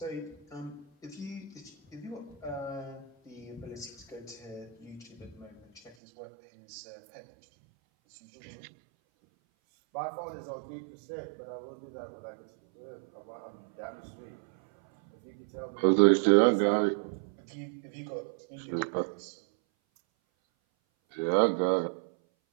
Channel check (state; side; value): drops out; left; at 6.0 s